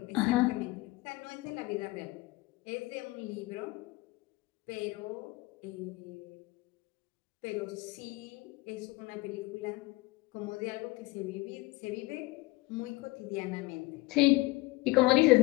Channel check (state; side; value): quieter; right; 21.5 dB